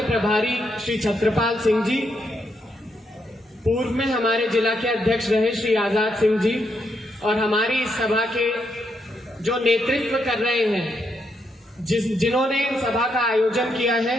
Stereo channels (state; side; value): normal; both; correlation 0.79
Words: प्रभारी श्री छत्रपाल सिंह जी, पूर्व में हमारे जिला के अध्यक्ष रहे श्री आजाद सिंह जी, और हमारी इस सभा के जो नेतृत्व कर रहे हैं, जिन्होंने इन सभा का आयोजन किया है,